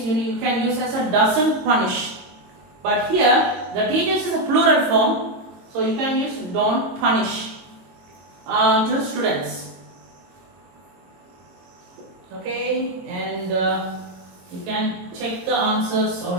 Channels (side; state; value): left; late; 22 ms